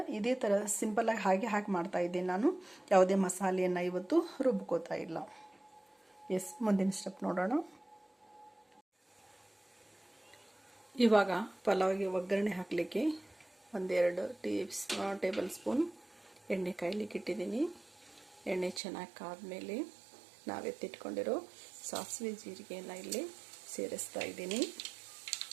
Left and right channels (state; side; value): drops out; left; at 18.8 s